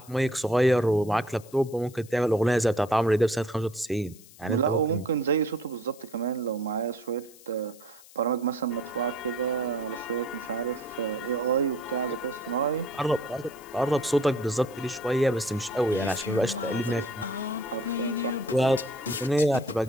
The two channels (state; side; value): noise; left; hiss, 22 dB below the sound